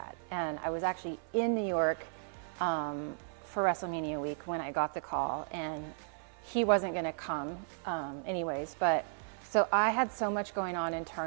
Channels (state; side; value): silent; left; 55 dB below the other